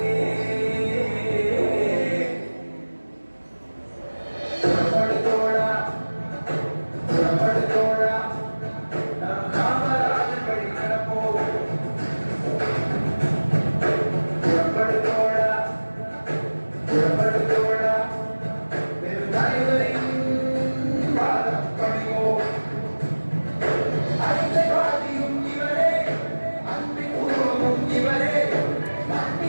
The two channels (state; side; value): inverted; both; correlation -1.00